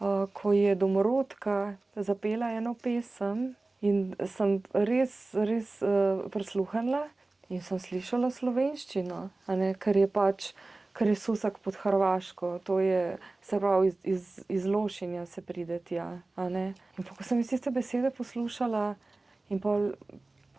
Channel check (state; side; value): quieter; left; 3.1 dB